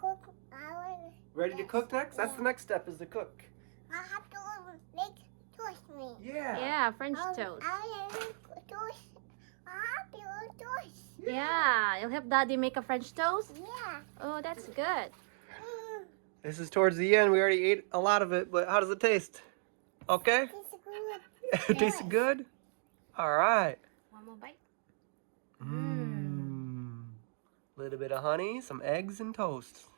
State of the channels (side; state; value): left; silent; digital silence